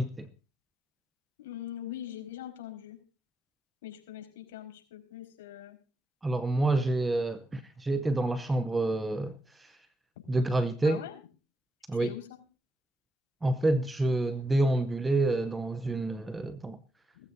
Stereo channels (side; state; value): both; normal; correlation 0.85